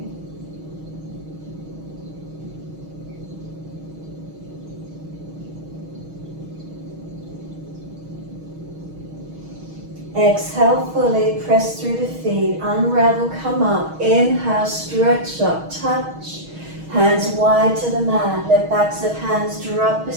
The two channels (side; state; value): left; late; 6.3 ms